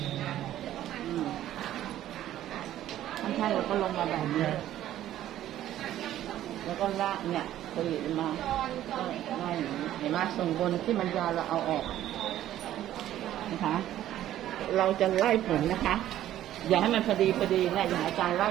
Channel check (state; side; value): quieter; left; 12.7 dB